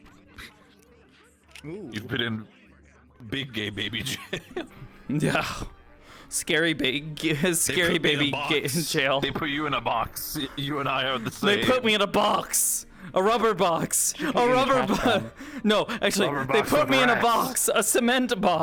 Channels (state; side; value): identical; both; correlation 1.00